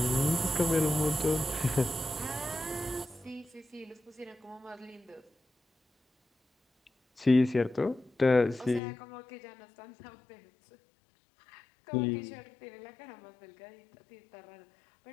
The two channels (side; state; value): right; drops out; at 8.8 s